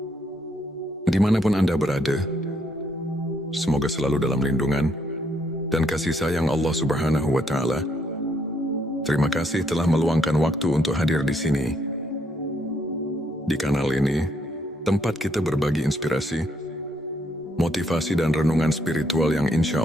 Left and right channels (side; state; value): both; normal; correlation 0.72